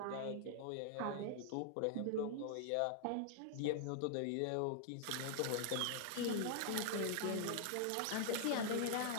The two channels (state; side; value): different; both; correlation 0.00